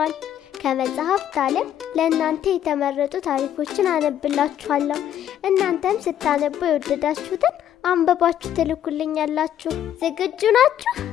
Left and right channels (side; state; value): right; quieter; 10.6 dB